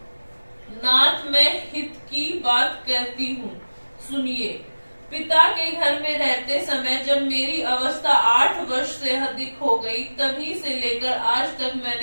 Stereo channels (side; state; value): both; inverted; correlation -1.00